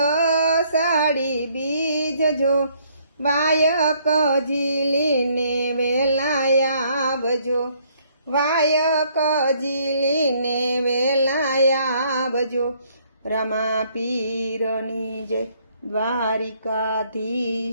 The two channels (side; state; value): both; inverted; correlation -0.66